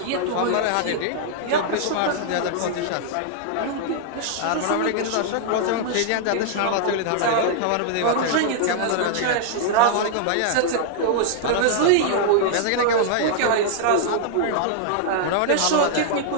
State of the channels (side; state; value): both; different; correlation -0.01